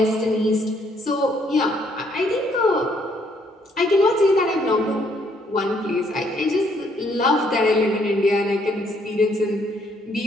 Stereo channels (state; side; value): normal; both; correlation 0.68